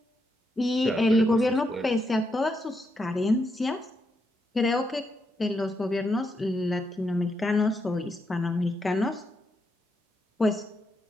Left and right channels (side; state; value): both; normal; correlation 0.81